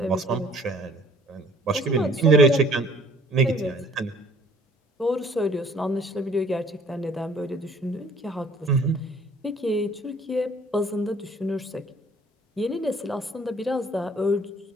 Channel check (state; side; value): normal; both; correlation 0.55